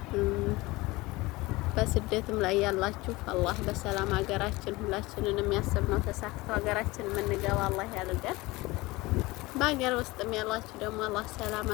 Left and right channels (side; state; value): right; quieter; 21.4 dB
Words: በስደትም ላይ ያላችሁ አላህ በሰላም ሀገራችን ሁላችንን የሚያስብነው ተሳክቶ ሀገራችን የምንገባ አላህ ያድርገን። በሀገር ውስጥም ያላችሁ ደግሞ አላህ